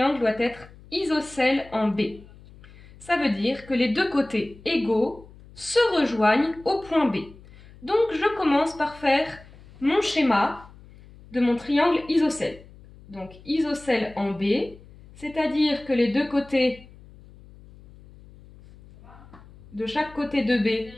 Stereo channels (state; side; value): noise; left; hum, 22 dB below the sound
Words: doit être isocèle en B. Ça veut dire que les deux côtés égaux se rejoignent au point B. Donc je commence par faire mon schéma de mon triangle isocèle. Donc isocèle en B, c'est-à-dire que les deux côtés de chaque côté de B